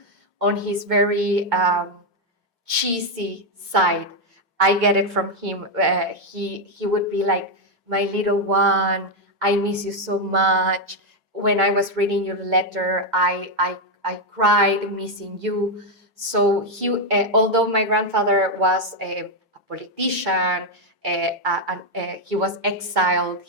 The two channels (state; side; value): normal; both; correlation 0.02